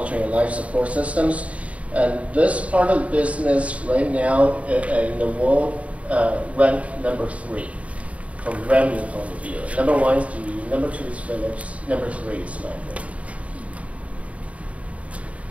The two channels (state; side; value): late; left; 0.066 ms